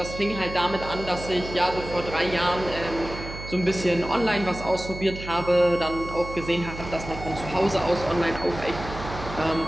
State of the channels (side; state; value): right; noise; hum, 10 dB below the sound